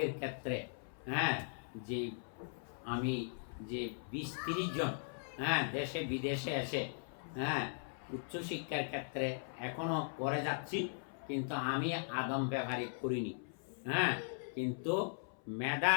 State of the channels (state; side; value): silent; right; 52 dB below the other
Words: ক্ষেত্রে যে আমি যে 20-30 জন দেশে বিদেশে এসে উচ্চশিক্ষার ক্ষেত্রে এখনো করে যাচ্ছি, কিন্তু আমি আদম ব্যবহারিক করিনি। কিন্তু মেধা